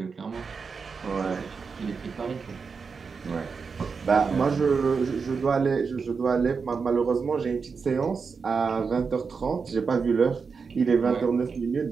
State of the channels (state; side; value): quieter; left; 5.3 dB